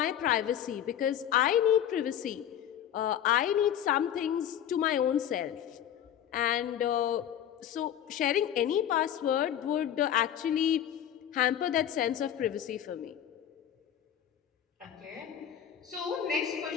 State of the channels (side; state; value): right; quieter; 10.3 dB